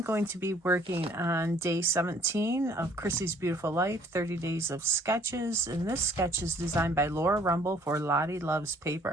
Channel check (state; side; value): normal; both; correlation 0.59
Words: going to be working on day 17 of Chrissy's Beautiful Life, 30 Days of Sketches, and this sketch is designed by Laura Rumble for Lottie Loves